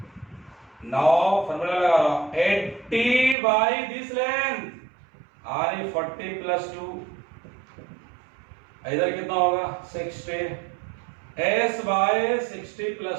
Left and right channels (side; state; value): left; drops out; at 3.4 s